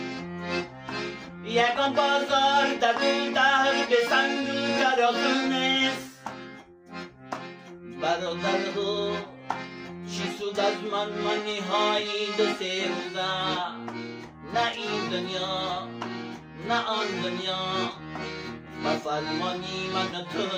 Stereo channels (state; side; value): identical; both; correlation 1.00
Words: یکان بازار در دو در به سنگ و ترازو نیست برادرها چی سود از من نهایی دو سه روزه نه این دنیا نه آن دنیا بفرمانی من